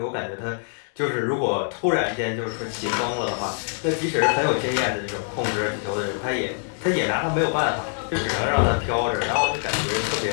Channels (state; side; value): silent; right; 62 dB below the other